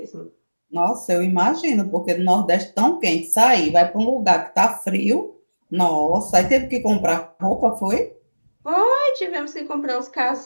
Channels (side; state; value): both; inverted; correlation -1.00